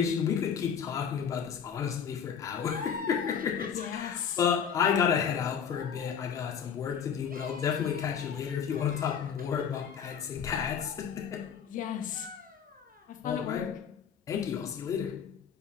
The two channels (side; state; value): right; quieter; 7.5 dB